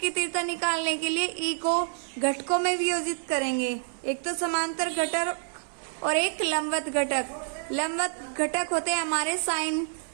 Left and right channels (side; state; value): left; silent; 59 dB below the other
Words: तीव्रता निकालने के लिए E को घटकों में वियोजित करेंगे। एक तो समांतर घटक और एक लंबवत घटक। लंबवत घटक होते हैं हमारे साइन